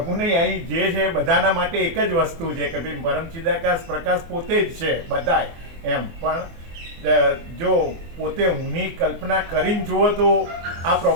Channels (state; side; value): late; left; 24 ms